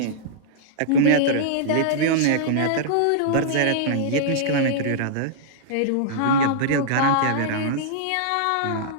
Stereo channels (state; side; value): different; both; correlation -0.02